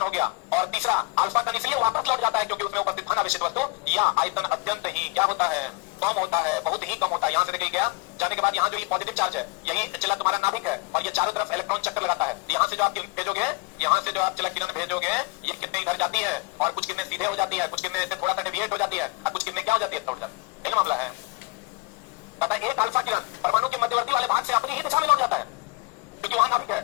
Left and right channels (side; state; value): right; quieter; 25.8 dB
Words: हो गया। और तीसरा अल्फा कण इसलिए वापस लौट जाता है क्योंकि उसमें उपस्थित धनावेशित वस्तु या आयतन अत्यंत ही क्या होता है? कम होता है, बहुत ही कम होता है। यहाँ से निकल गया, जाने के बाद यहाँ जो ये पॉजिटिव चार्ज है, यही चला तुम्हारा नाभिक है, और ये चारों तरफ इलेक्ट्रॉन चक्कर लगाता है। यहाँ से जो आप भेजोगे, यहाँ से जो आप चला किरण भेजोगे, ये कितने इधर जाती है, और कुछ कितने सीधे हो जाती है, कुछ कितने ऐसे थोड़ा सा डेविएट हो जाती है, और कुछ कितने क्या हो जाती है? तोड़ जाती है। यही मामला है। पता है एक अल्फा किरण परमाणु के मध्यवर्ती वाले भाग से अपनी ही दिशा में लौट जाता है, क्योंकि वहां नाभिक है,